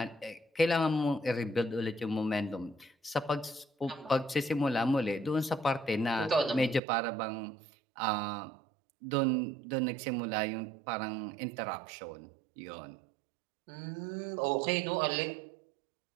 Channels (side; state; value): left; drops out; at 6.8 s